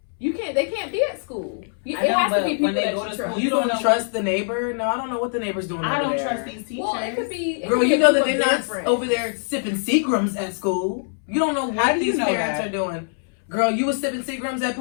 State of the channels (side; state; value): right; silent; 63 dB below the other